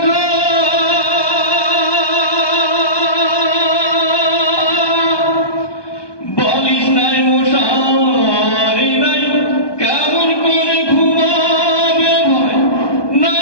বালিশ নাই মশারি নাই, কেমন করে ঘুমাবে ভাই,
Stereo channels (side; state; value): right; late; 1.2 ms